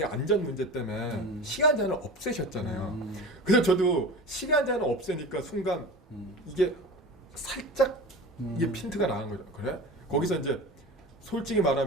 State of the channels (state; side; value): normal; both; correlation 0.33